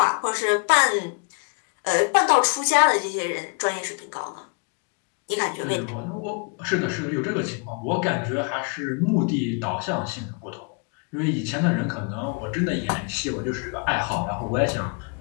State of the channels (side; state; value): right; quieter; 36.7 dB